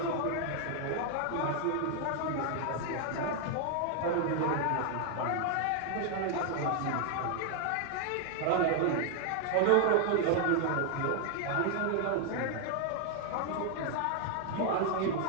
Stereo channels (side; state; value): both; different; correlation 0.00